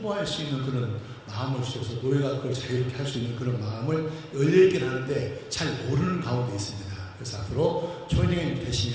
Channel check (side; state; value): both; identical; correlation 1.00